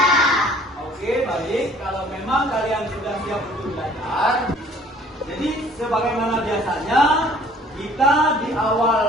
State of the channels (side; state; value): both; normal; correlation 0.54